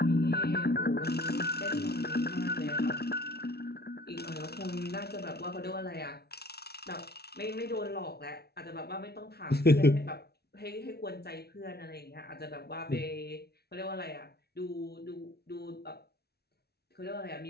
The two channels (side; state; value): right; late; 0.47 ms